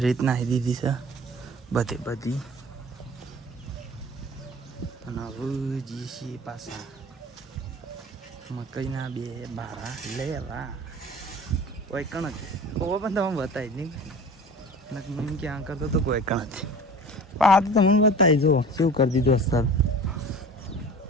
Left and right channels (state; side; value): normal; both; correlation 0.40